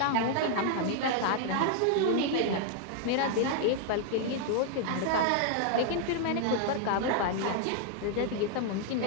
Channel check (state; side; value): different; both; correlation 0.00